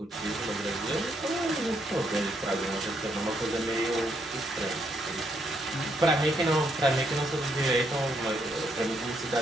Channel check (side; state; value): both; normal; correlation 0.75